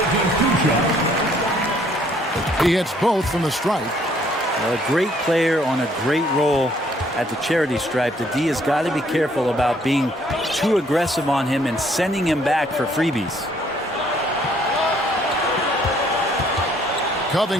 He hits both from the stripe. A great player on a great role at the charity stripe. The D has got to be careful about being too aggressive on him and sending him back for freebies.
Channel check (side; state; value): both; normal; correlation 0.64